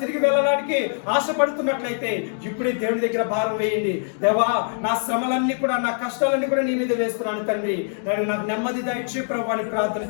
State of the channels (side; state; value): right; silent; digital silence